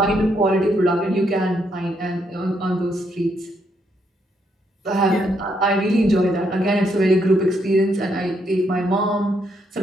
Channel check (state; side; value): normal; both; correlation 0.75